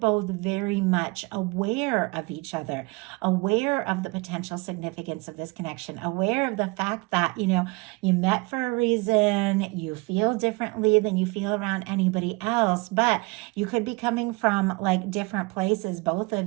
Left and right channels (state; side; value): quieter; left; 26.5 dB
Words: very much aware of each other, aware of the potential significance of this connection, aware of the fact that, you met for a reason, you feel differently than you feel around anybody else, but you could be coming from like different places, both